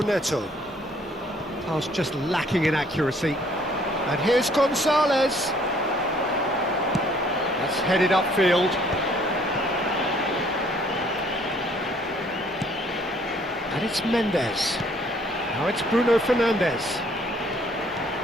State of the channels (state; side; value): normal; both; correlation 0.61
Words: Pass just lacking in accuracy. And here's Gonzalez. That's headed upfield. And it's Mendes. Now it's Bruno Fernandes.